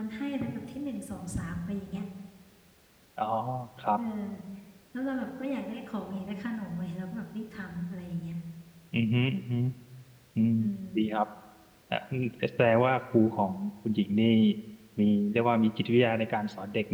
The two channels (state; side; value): identical; both; correlation 1.00